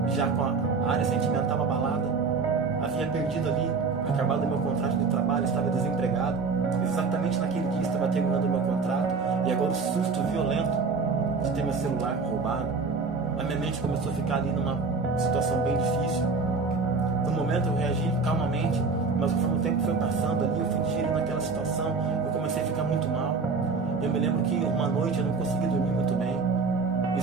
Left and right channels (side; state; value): left; quieter; 4.6 dB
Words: já com a área sentimental abalada, havia perdido ali, acabado o meu contrato de trabalho, estava desempregado. Exatamente naquele dia estava terminando o meu contrato, e agora o susto violento de ter meu celular roubado. A minha mente começou a ficar ali numa situação bem difícil. No momento eu reagi calmamente, mas conforme o tempo foi passando ali, eu fui digerindo aquela situação, eu comecei a ficar muito mal. Eu me lembro que uma noite eu não consegui dormir muito bem,